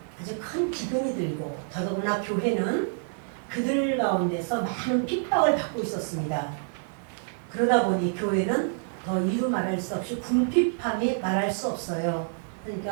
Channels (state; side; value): silent; left; digital silence